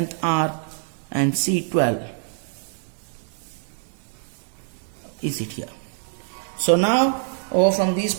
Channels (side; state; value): left; silent; 61 dB below the other